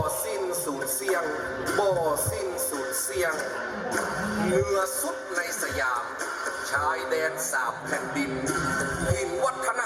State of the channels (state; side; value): identical; both; correlation 1.00